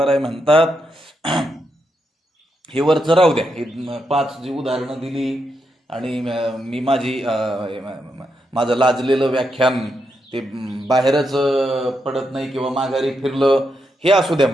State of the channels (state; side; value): normal; both; correlation 0.83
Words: राय म्हणतात हे वरचं राहू द्या, हे 5 जी उदाहरणं दिली आणि मी माझं लाजलेलं व्याख्यान ते बाहेरच पडत नाही किंवा माघारी फिरलं हे असू द्या